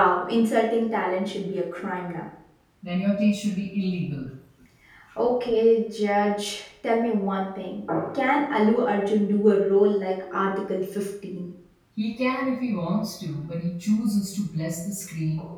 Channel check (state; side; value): identical; both; correlation 1.00